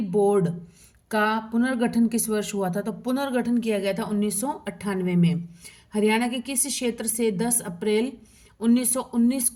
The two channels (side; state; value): both; identical; correlation 1.00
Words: board का पुनर्गठन किस वर्ष हुआ था? तो पुनर्गठन किया गया था 1998 में। हरियाणा के किस क्षेत्र से 10 अप्रैल 1919